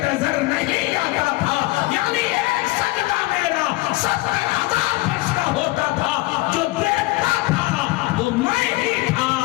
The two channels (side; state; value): right; quieter; 21.0 dB